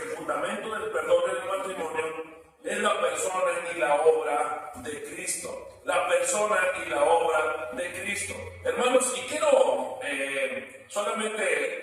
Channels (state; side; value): identical; both; correlation 1.00